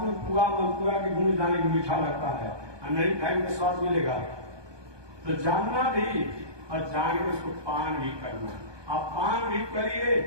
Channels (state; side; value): late; left; 1.2 ms